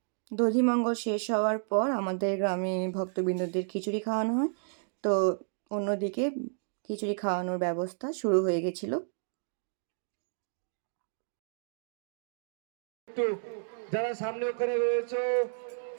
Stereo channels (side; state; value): left; silent; digital silence